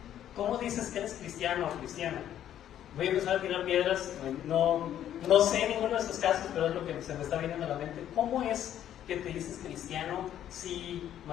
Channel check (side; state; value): right; quieter; 11.0 dB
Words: ¿Cómo dices que eres cristiano o cristiana? Voy a empezar a tirar piedras, no sé ninguno de estos casos, pero es lo que se me está viniendo a la mente. ¿Cómo es que te dices cristiano si